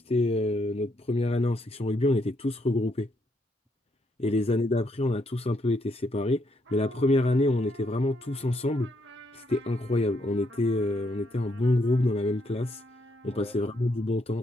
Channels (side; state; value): both; normal; correlation 0.75